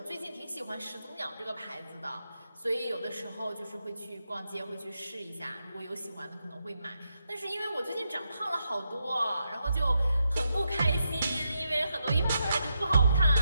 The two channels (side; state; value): both; inverted; correlation -0.83